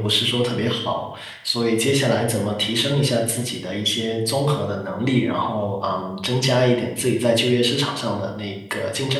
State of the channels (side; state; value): both; identical; correlation 1.00